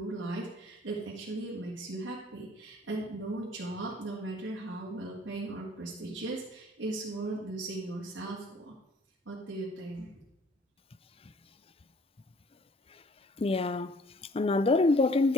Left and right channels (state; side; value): normal; both; correlation 0.56